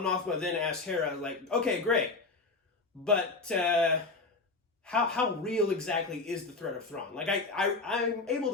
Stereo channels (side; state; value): right; quieter; 3.7 dB